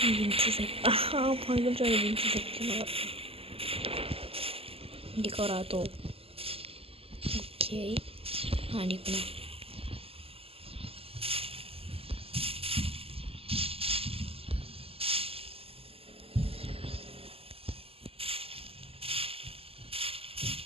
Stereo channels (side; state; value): left; late; 0.28 ms